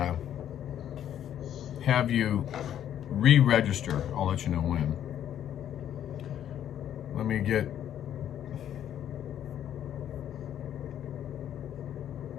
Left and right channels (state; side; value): quieter; right; 10.5 dB